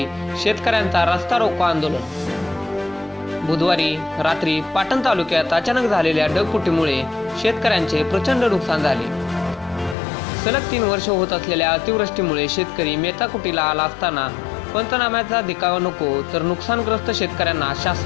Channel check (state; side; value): drops out; right; at 10.0 s